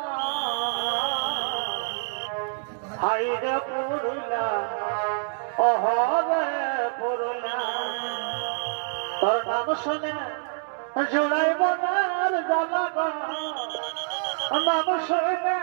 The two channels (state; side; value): silent; left; digital silence